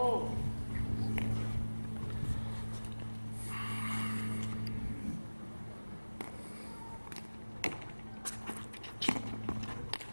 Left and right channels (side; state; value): both; inverted; correlation -1.00